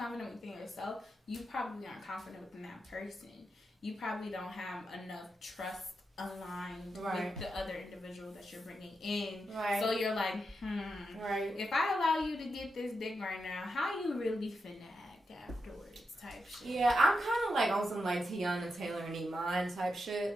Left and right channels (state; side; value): normal; both; correlation 0.87